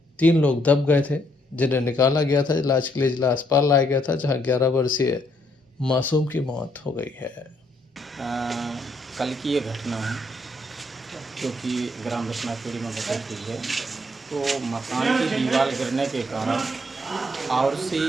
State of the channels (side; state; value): both; normal; correlation 0.71